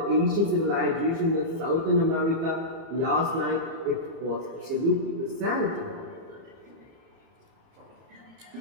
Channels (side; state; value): left; late; 30 ms